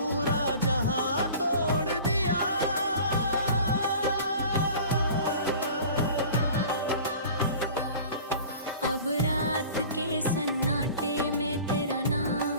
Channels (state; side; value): inverted; both; correlation -0.42